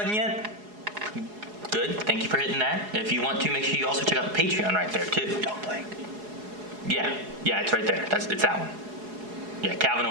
yet? Good. Thank you for hitting that. If you want to, make sure you also check out Patreon right there too. Don't blink. Yeah, it's right there. It's that one. Yeah, Calvin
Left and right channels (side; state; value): left; late; 4.8 ms